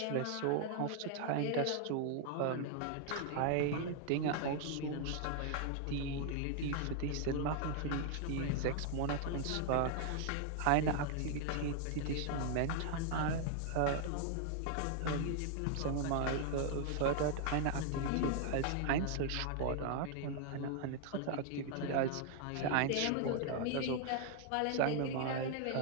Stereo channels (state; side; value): different; both; correlation 0.00